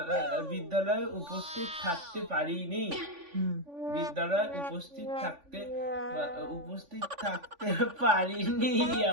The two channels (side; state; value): left; late; 3.5 ms